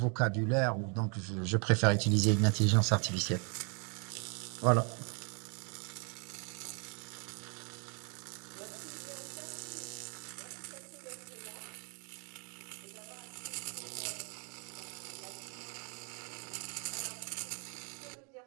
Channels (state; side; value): quieter; left; 36.1 dB